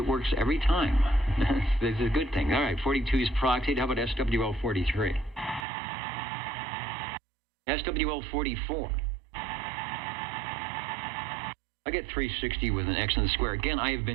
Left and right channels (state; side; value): drops out; left; at 5.7 s